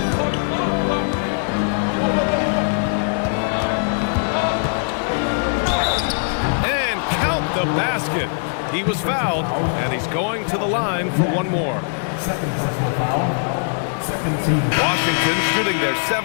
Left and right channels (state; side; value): silent; right; 63 dB below the other